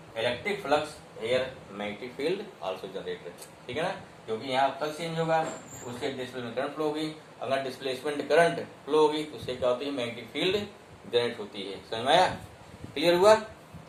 electric flux here magnetic field also generated, ठीक है ना, क्योंकि यहाँ flux change होगा उससे displacement current flow होगी, अगर displacement current flow होगी तो उससे क्या होती है, मैग्नेटिक फील्ड जनरेट होती है। समझ में आया, क्लियर हुआ?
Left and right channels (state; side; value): identical; both; correlation 1.00